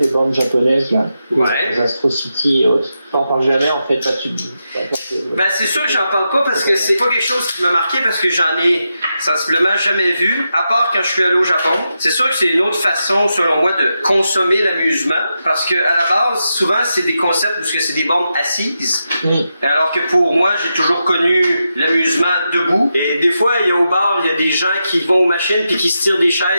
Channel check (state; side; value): inverted; both; correlation -0.87